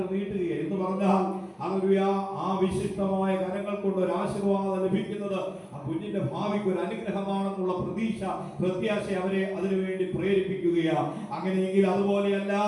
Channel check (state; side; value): identical; both; correlation 1.00